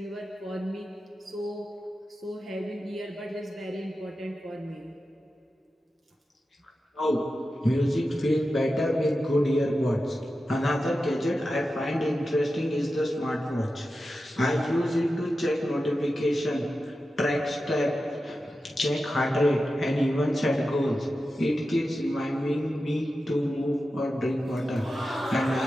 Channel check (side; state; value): both; normal; correlation 0.92